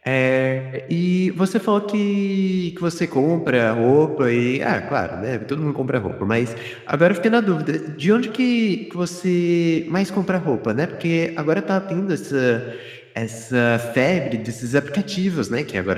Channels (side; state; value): both; identical; correlation 1.00